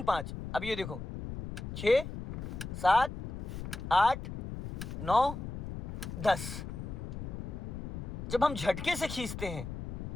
5। अब ये देखो 6 7 8 9 10। जब हम झटके से खींचते हैं,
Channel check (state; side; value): noise; left; rumble, 7 dB below the sound